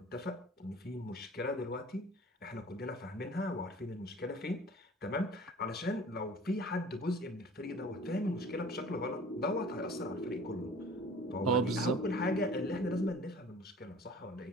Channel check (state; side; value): normal; both; correlation 0.46